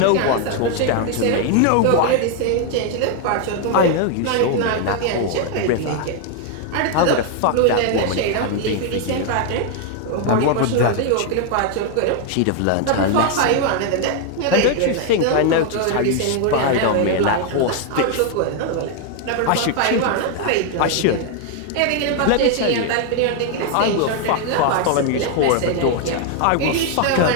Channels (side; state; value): both; different; correlation 0.00